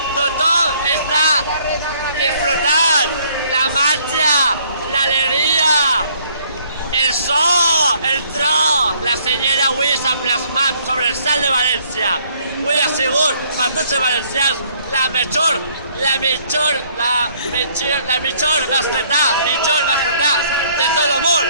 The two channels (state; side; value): inverted; both; correlation -0.63